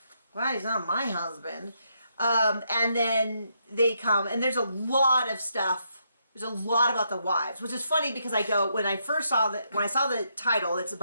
glad he's not my husband. And then they come, and there's a lot of stuff. There's a lot about the wives, which is funny because when I saw the title, it's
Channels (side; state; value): both; inverted; correlation -0.78